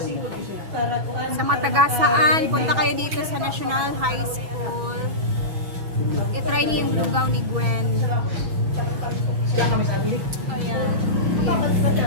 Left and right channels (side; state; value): left; late; 6.1 ms